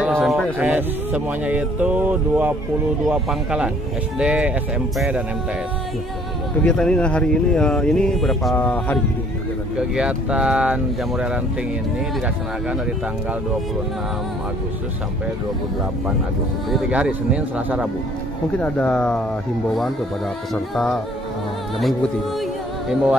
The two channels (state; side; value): normal; both; correlation 0.59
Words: SMA? Semuanya itu 22 pangkalan, SD, SMP, dan MTS. Kegiatan ini hari ini berapa hari? Kegiatan Jambore Ranting ini dilaksanakan dari tanggal 26 Agustus sampai 28 Agustus. Jadi 3 hari, Senin, Selasa, Rabu. Mungkin ada himbauan kepada peserta yang mengikuti.